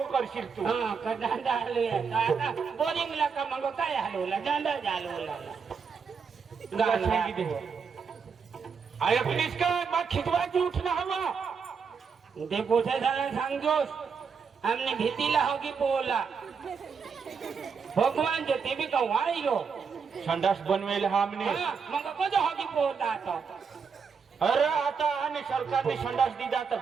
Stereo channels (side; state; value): left; quieter; 5.9 dB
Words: करशील तू. हा का दांडा हलवे आता बोरिंग ला का मंग काय हलवला दांडा हलवला गाल सांगी दे आय प्लीज का मग खिचवाची उठना हवा ते पोछे झाला सांगजोस हमने भीतीला होगी पोला भगवान जो ते भी का वाईलो संडास बनवेल हमने मग कजो होगी पोता तो अरे आता आने सरकार ने संडास दीदा